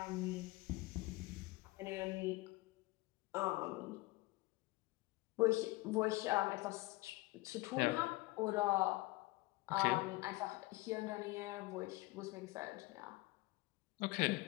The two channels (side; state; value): right; quieter; 21.4 dB